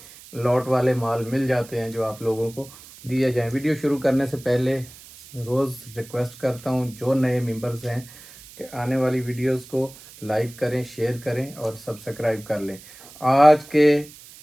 लॉट वाले माल मिल जाते हैं जो आप लोगों को दिए जाएं। वीडियो शुरू करने से पहले रोज़ रिक्वेस्ट करता हूं जो नए मेंबर्स हैं कि आने वाली वीडियोस को लाइक करें, शेयर करें और सब्सक्राइब कर लें। आज के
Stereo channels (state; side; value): noise; right; hiss, 20 dB below the sound